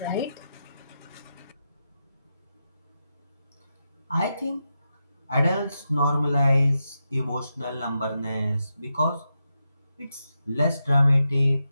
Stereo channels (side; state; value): both; inverted; correlation -0.87